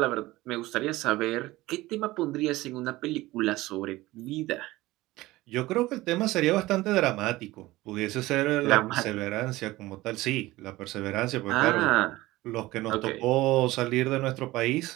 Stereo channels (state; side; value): quieter; left; 18.5 dB